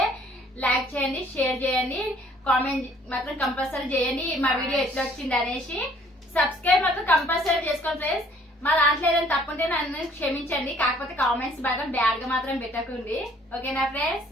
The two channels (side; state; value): both; normal; correlation 0.59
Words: లైక్ చేయండి, షేర్ చేయండి, కామెంట్ మాత్రం కంపల్సరీ చేయండి మా వీడియో ఎట్లా వచ్చింది అనేసి. సబ్స్క్రైబ్ మాత్రం కంపల్సరీ చేసుకోండి ఫ్రెండ్స్. మా దాంట్లో ఏదైనా తప్పుంటే నన్ను క్షమించండి, కాకపోతే కామెంట్స్ బాగా బ్యాడ్ గా మాత్రం పెట్టకండి. ఓకేనా ఫ్రెండ్స్?